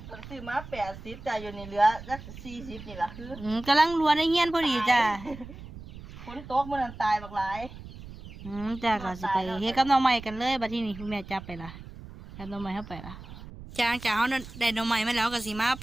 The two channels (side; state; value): right; noise; rumble, 14 dB below the sound